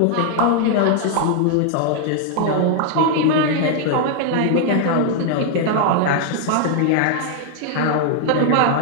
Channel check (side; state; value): both; different; correlation 0.00